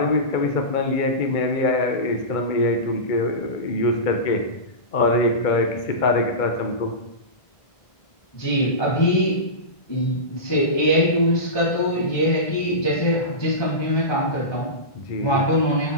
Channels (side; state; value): right; late; 1.5 ms